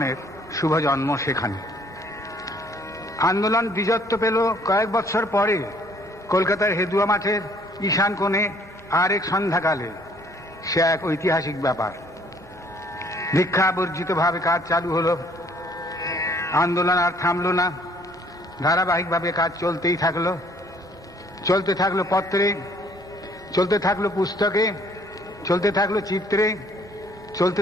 শুভ জন্ম সেখানে। আন্দোলন দ্বিজত্ব পেল কয়েক বছর পরে কলকাতার হেদুয়া মাঠের ঈশান কোণে আর এক সন্ধ্যাকালে। সে এক ঐতিহাসিক ব্যাপার। দীক্ষাবর্জিতভাবে কাজ চালু হলো। আন্দোলন আর থামল না, ধারাবাহিকভাবে কাজ চলতেই থাকলো। চলতে থাকলো পত্রে, চলতে থাকলো পুস্তকে, চলতে থাকলো চিত্রে, চলতে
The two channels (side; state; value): both; normal; correlation 0.61